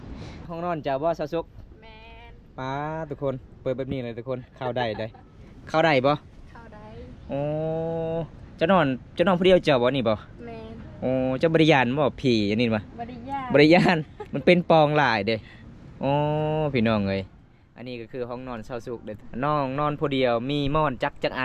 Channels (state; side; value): identical; both; correlation 1.00